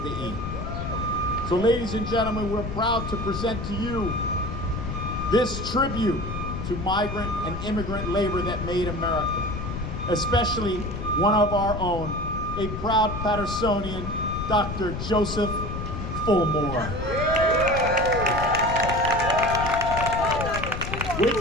the E. So ladies and gentlemen, we're proud to present to you this tribute to migrant and immigrant labor that made America, especially one of our own, a proud Patersonian, Dr. Joseph Fulmore. Wait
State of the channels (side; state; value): left; noise; rumble, 6 dB below the sound